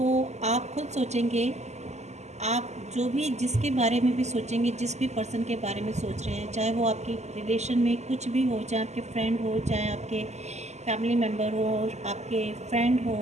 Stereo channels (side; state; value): left; late; 0.33 ms